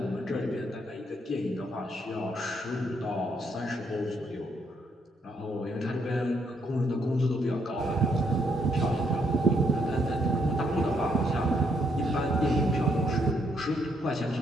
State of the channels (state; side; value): normal; both; correlation 0.74